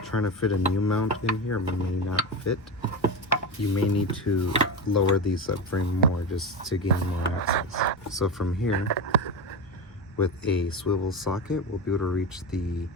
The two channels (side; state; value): both; normal; correlation 0.18